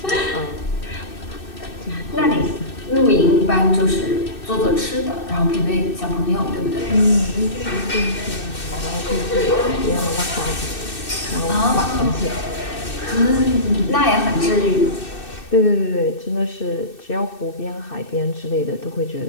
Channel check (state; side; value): late; right; 2.6 ms